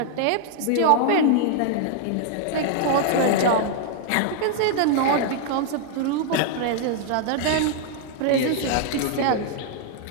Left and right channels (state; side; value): different; both; correlation 0.00